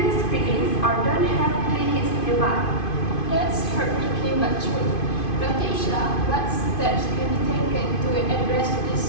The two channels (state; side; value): late; right; 2.5 ms